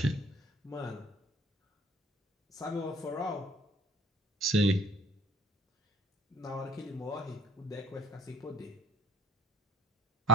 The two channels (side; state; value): both; normal; correlation 0.56